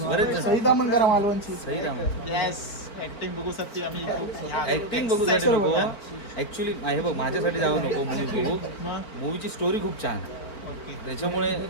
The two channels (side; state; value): right; late; 4.4 ms